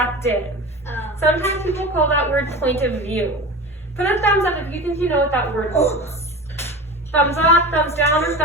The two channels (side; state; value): both; normal; correlation 0.31